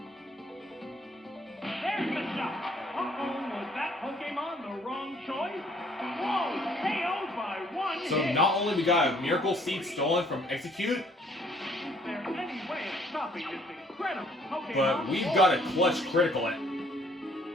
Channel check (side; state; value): both; normal; correlation 0.61